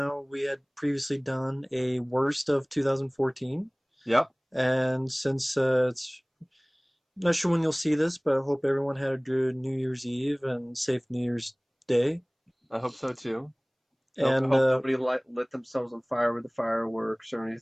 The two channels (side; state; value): both; identical; correlation 1.00